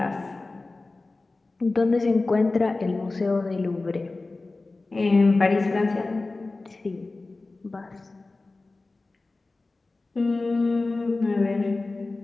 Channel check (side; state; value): right; quieter; 3.4 dB